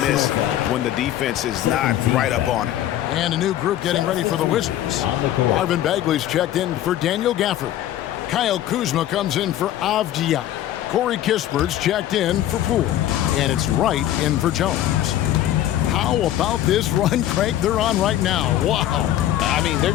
miss when the defense is not right up on it. And a new group getting ready for the Wizards. Marvin Bagley's checked in for Daniel Gafford. Kyle Kuzma comes in for Avdia. Corey Kispert's checked in for Poole. And it's Wright in for Jones. How about this run crank they're on right now? Wow. I mean, they're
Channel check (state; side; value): quieter; right; 12.6 dB